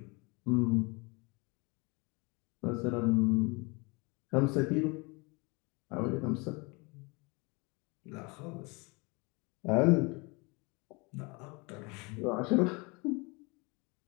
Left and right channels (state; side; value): quieter; right; 28.4 dB